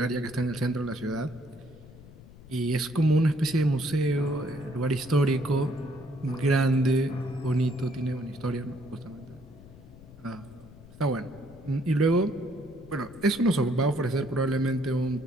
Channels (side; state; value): left; noise; rumble, 20 dB below the sound